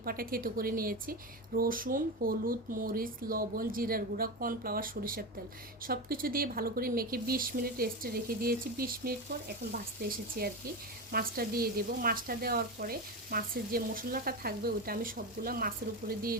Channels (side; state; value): both; normal; correlation 0.19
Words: থেতো করে নিয়েছি। রসুন, হলুদ, মরিচ, লবণ, জিরার গুঁড়া, কর্নফ্লাওয়ার, সরিষার তেল সব কিছু দিয়ে ভালো করে মেখে 20 মিনিট রেস্টে রেখে দিয়েছি। 20 মিনিট পর এখন ভাজতে এসেছি আর কি। মাছটা দিয়ে দেবো। মাছটা দেওয়ার পরে মাছের যে মশলাটা থাকবে ওইটা আমি সবগুলো মাছের উপরে দিয়ে